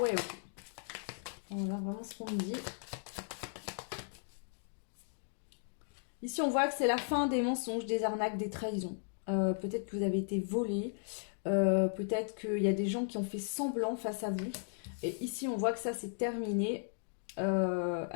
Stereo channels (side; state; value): right; silent; digital silence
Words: ok. » Voilà vraiment ce qu'on me dit. Ici, on voit que c'est la fin des mensonges, des arnaques, des trahisons. Peut-être que vous avez été volé. Peut-être qu'il y a des gens qui ont fait semblant face à vous. Et ici, on voit que ça, c'est terminé.